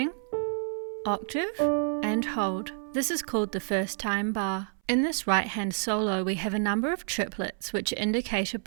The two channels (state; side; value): silent; left; 59 dB below the other